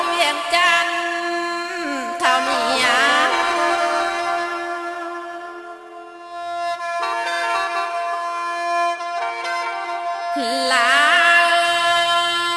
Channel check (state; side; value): identical; both; correlation 1.00